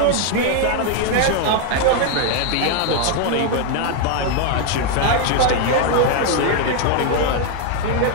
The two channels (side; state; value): both; different; correlation 0.00